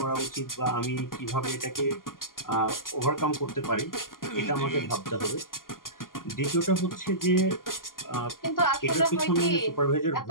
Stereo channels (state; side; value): late; right; 0.91 ms